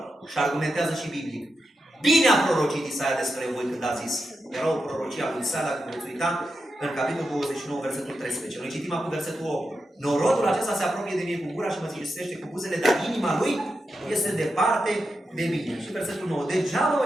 și argumentează și biblic. Bine a prorocit Isaia despre voi când a zis. Era o prorocie a lui Isaia, dacă veți uita, în capitolul 29, versetul 13. Noi citim acum versetul 8. Norodul acesta se apropie de mine cu gura și mă cinstește cu buzele, dar inima lui este departe de mine. Și versetul 9. Degeaba mă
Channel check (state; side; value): normal; both; correlation 0.87